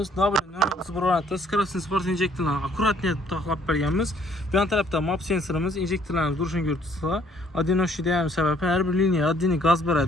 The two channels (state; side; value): normal; both; correlation 0.62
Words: Variantda скоростный sport injektorlarni akkuratni etib taxlab berganmiz. Bu yon tarafda map sensorimiz, injektorlarimiz durishini ko'rtuslar. Adinoshida ham sababi har bir liniya addini gaz